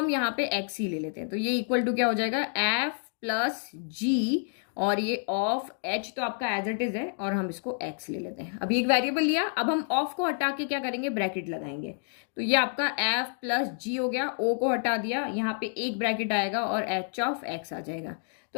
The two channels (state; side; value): silent; right; 59 dB below the other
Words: यहाँ पे X ही ले लेते हैं। तो ये इक्वल टू क्या हो जाएगा, F प्लस जी और ये ऑफ H तो आपका एज इट इज है और हम इसको X ले लेते हैं। अभी एक वेरिएबल लिया, अब हम ऑफ को हटा के क्या करेंगे, ब्रैकेट लगाएंगे। तो ये आपका F प्लस जी हो गया, O को हटा दिया, यहाँ पे एक ब्रैकेट आएगा और H ऑफ X आ जाएगा।